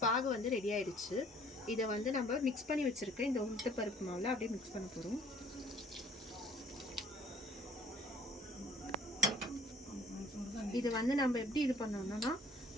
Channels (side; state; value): both; normal; correlation 0.56